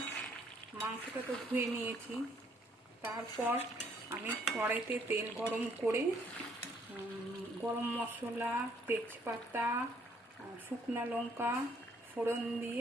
মাংসটা তো ধুয়ে নিয়েছি। তারপর আমি কড়াইতে তেল গরম করে গরম মশলা, তেজপাতা, শুকনো লঙ্কা ফোড়ন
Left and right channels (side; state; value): both; normal; correlation 0.66